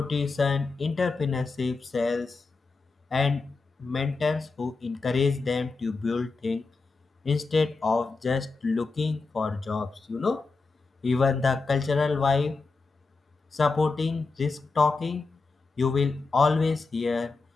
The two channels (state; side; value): quieter; right; 4.0 dB